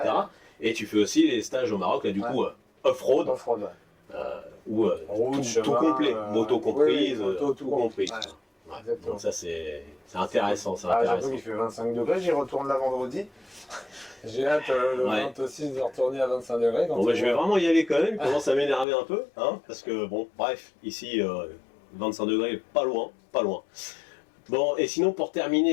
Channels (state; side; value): drops out; right; at 18.9 s